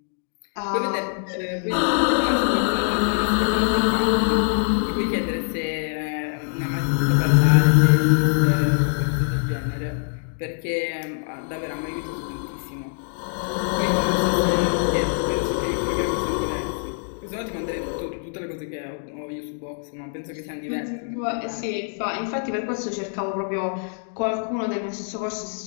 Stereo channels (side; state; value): right; silent; 63 dB below the other